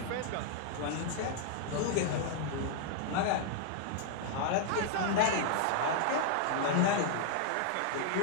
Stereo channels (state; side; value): different; both; correlation -0.01